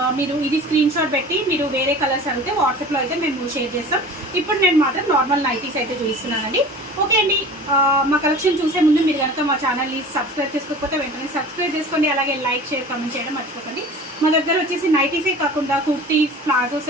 మీరు ఇది స్క్రీన్ షాట్ పెట్టి మీరు వేరే కలర్స్ అడిగితే వాట్సాప్లో అయితే మేము షేర్ చేస్తాం. ఇప్పుడు నేను మాత్రం నార్మల్ నైటీస్ అయితే చూపిస్తున్నానండి. ఓకే అండి, మా కలెక్షన్ చూసే ముందు మీరు కనుక మా ఛానల్ని సబ్స్క్రైబ్ చేసుకోకపోతే వెంటనే సబ్స్క్రైబ్ చేసుకోండి. అలాగే లైక్, షేర్, కామెంట్ చేయడం మర్చిపోకండి. మా దగ్గర వచ్చేసి నైటీసే కాకుండా kurtis, palazzo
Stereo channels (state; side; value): normal; both; correlation 0.40